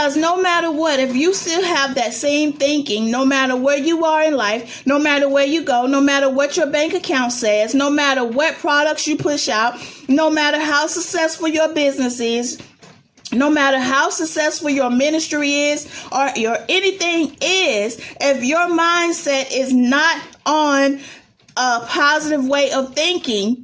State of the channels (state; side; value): identical; both; correlation 1.00